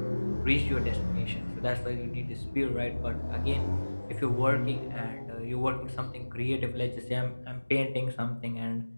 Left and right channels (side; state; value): both; inverted; correlation -1.00